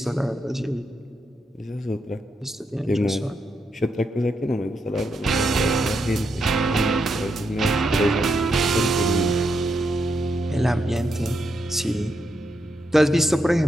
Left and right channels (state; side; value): normal; both; correlation 0.82